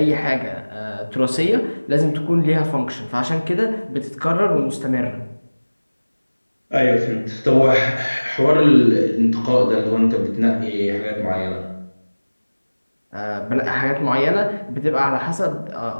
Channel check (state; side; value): inverted; both; correlation -1.00